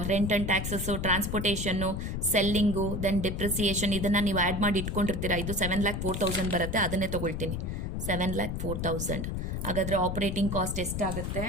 rent and taxes, transportation, selling, then depreciation, ಇದನ್ನು ನೀವು ಆ್ಯಡ್ ಮಾಡಿ ಇಟ್ಕೊಂಡಿರ್ತೀರಾ. ಇದು 7,04,000 ಬರುತ್ತೆ. ಅದನ್ನೇ ತೊಗೊಳ್ತೀನಿ, 7,04,000. ಹಾಗಾದರೆ ಆಪ್ರೇಟಿಂಗ್ ಕಾಸ್ಟ್ ಎಷ್ಟಾಗುತ್ತೆ?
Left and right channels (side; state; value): left; noise; rumble, 3 dB below the sound